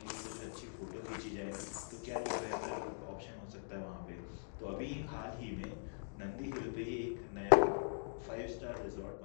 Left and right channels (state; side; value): silent; right; digital silence